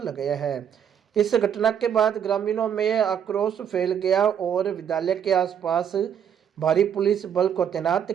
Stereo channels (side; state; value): left; quieter; 8.6 dB